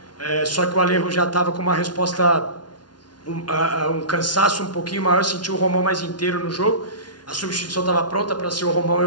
só que o Alejo já estava com uma resposta, um cansaço um pouquinho maior, senti o Romão mais inteiro no jogo, a substituição estava pronta para ser o Romão,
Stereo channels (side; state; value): right; late; 0.70 ms